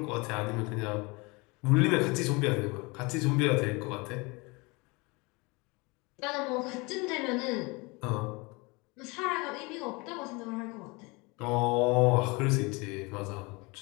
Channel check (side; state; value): right; quieter; 26.7 dB